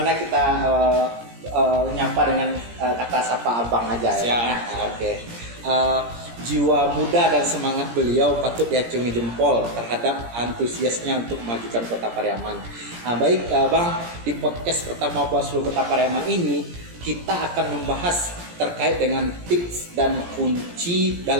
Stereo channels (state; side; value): late; left; 17 ms